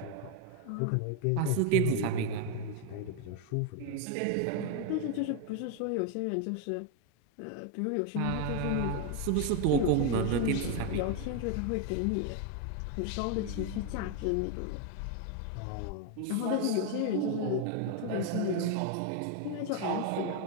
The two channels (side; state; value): both; different; correlation 0.01